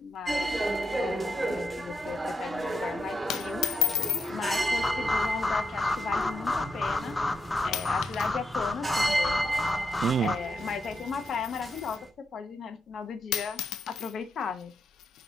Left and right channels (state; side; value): normal; both; correlation 0.83